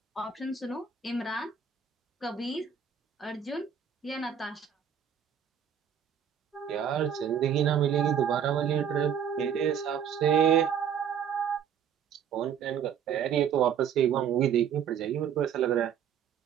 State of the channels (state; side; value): quieter; left; 8.1 dB